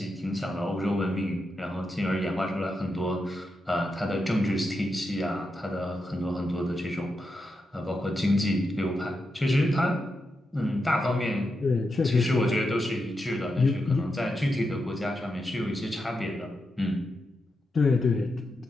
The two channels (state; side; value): normal; both; correlation 0.86